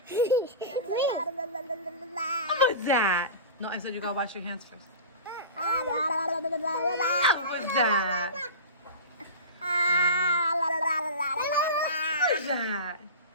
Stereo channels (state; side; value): inverted; both; correlation -0.30